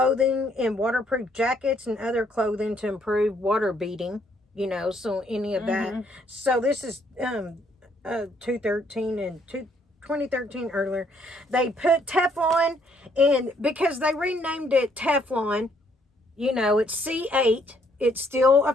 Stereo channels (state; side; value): normal; both; correlation 0.68